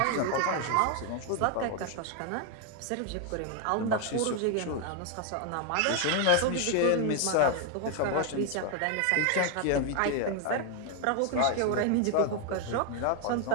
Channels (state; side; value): different; both; correlation 0.01